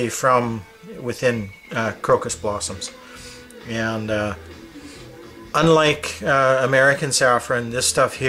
from within crocus blossoms. And unlike American saffron, this stuff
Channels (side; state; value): both; identical; correlation 1.00